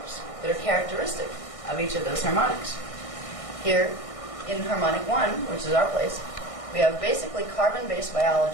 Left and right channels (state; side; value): late; right; 1.6 ms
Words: that are characteristic of each of those harmonics. Here in harmonic 1, which is our place, we have basically carbon-based